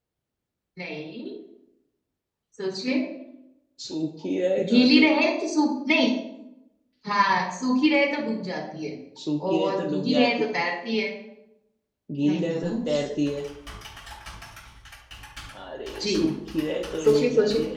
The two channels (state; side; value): identical; both; correlation 1.00